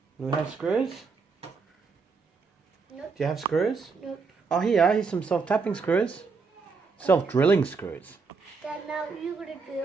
Do we have screws? Nope. Do you have screws? Nope. Oh, here's some self-tapping screws. Self-drilling screws. Dad, now you're going to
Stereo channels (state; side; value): quieter; left; 4.7 dB